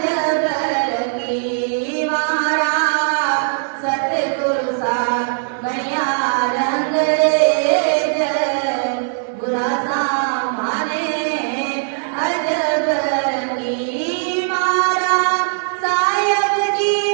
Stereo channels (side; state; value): left; silent; 65 dB below the other